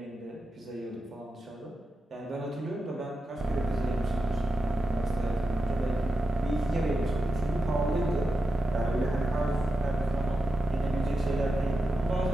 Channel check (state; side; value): normal; both; correlation 0.90